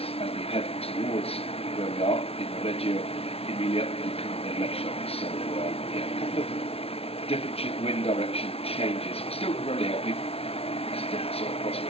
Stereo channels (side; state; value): right; late; 0.29 ms